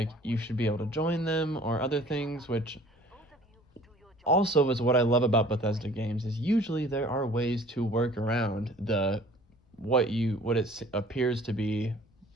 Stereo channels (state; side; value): normal; both; correlation 0.50